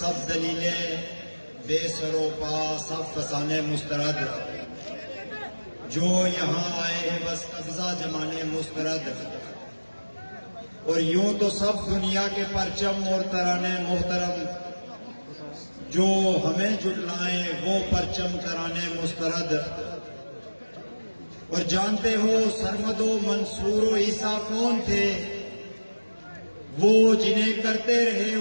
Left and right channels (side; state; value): both; inverted; correlation -1.00